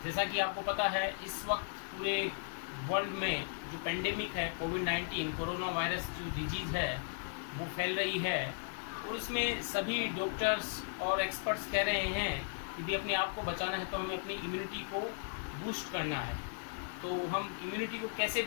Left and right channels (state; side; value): silent; right; digital silence